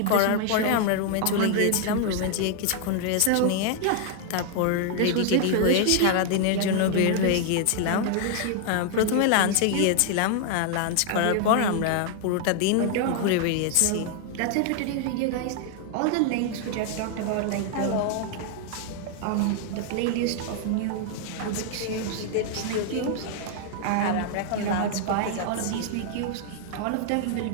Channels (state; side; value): different; both; correlation 0.00